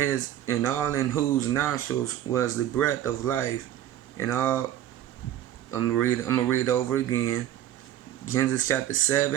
whose nostrils was the breath of life, and all. I'm gonna read over again. Genesis chapter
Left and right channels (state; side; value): quieter; left; 11.9 dB